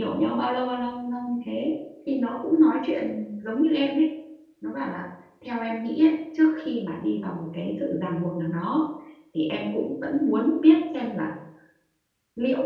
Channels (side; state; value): both; identical; correlation 1.00